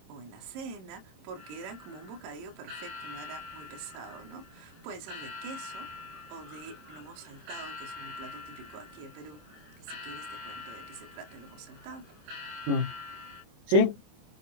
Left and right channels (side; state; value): left; late; 26 ms